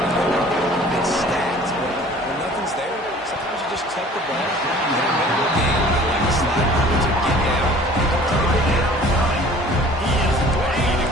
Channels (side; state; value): both; normal; correlation 0.49